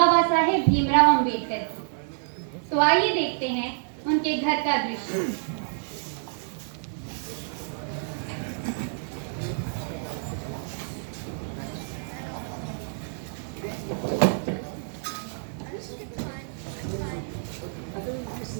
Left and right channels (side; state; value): left; silent; digital silence